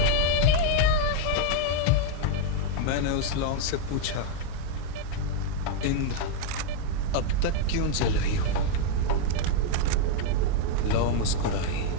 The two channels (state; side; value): different; both; correlation 0.01